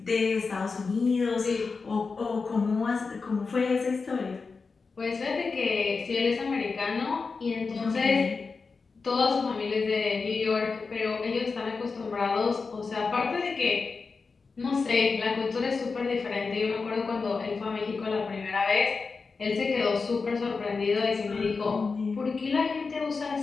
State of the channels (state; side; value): quieter; right; 4.6 dB